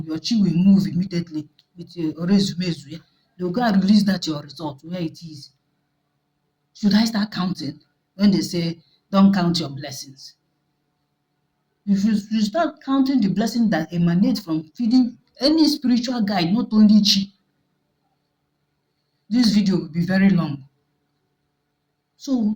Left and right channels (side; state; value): both; identical; correlation 1.00